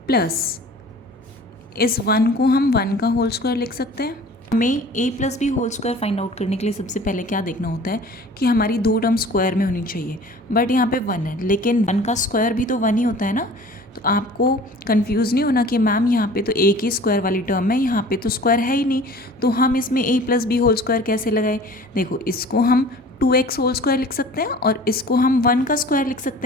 plus इस 1 को हम 1 का होल स्क्वायर लिख सकते हैं. हमें a plus B whole square find out करने के लिए सबसे पहले क्या देखना होता है कि हमारी दो टर्म स्क्वायर में होनी चाहिए. बट यहाँ पे 1 है, लेकिन 1 का स्क्वायर भी तो 1 ही होता है ना. तो आपको कंफ्यूज नहीं होना कि मैम यहाँ पे तो a की स्क्वायर वाली टर्म है, यहाँ पे तो स्क्वायर है ही नहीं, तो हम इसमें a plus B whole square कैसे लगाए. देखो, इसको हम 2x होल स्क्वायर लिख सकते हैं और इसको हम 1 का स्क्वायर लिख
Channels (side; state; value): both; normal; correlation 0.45